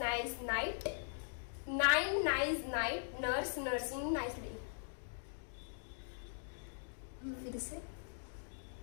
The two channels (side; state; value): right; silent; digital silence